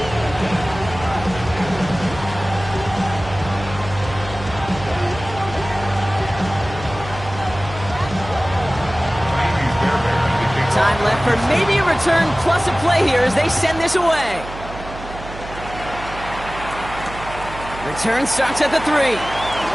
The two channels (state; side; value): noise; right; hum, 13 dB below the sound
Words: Time left for maybe a return plus a play here as they send this away. Return starts at the 3.